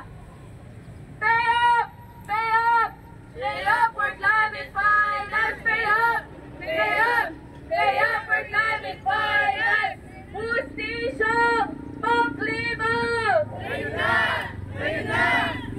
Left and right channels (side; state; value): both; identical; correlation 1.00